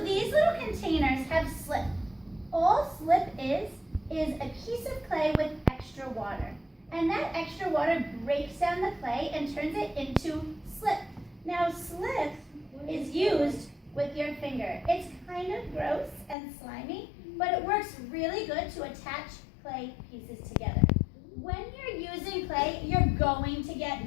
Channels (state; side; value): drops out; right; at 16.4 s